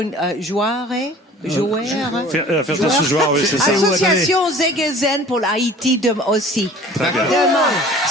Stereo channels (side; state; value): both; normal; correlation 0.46